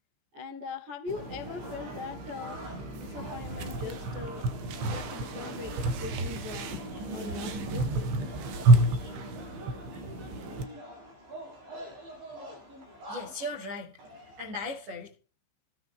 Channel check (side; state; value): left; late; 15 ms